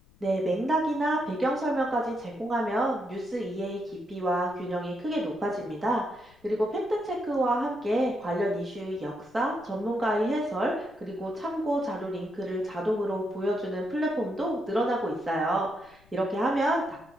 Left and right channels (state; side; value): noise; left; rumble, 28 dB below the sound